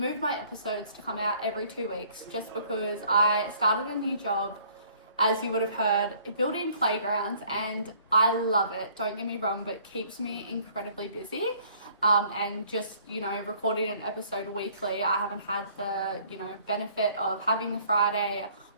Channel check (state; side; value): inverted; both; correlation -0.58